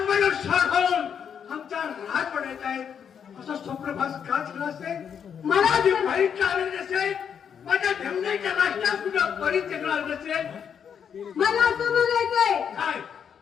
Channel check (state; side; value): quieter; right; 7.7 dB